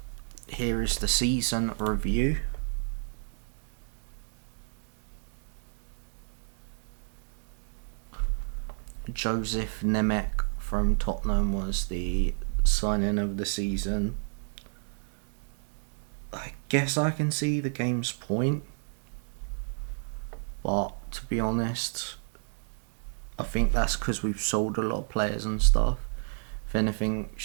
here is the season review. Joseph Nemec from Tottenham was the signing of the season. I guess I can see the game's point, but to be honest, I think that's because we've sold a lot of players and stuff. If anything,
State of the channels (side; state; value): left; silent; digital silence